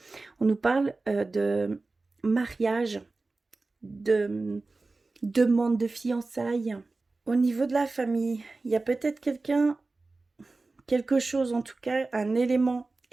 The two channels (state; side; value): quieter; left; 3.5 dB